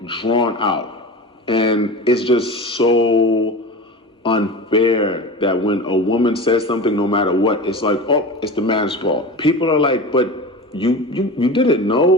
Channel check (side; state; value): both; normal; correlation 0.31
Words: drawn out. And it's just so unfair that when a woman says something, no matter what, it's like, oh, it's the man's fault. People are like, but you didn't